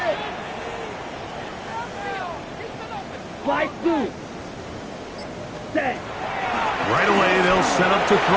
Fly through. Set. Right away, they'll set up to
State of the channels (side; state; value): both; identical; correlation 1.00